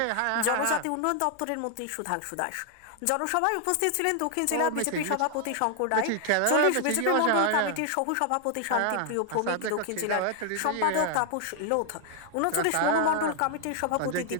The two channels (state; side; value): different; both; correlation 0.00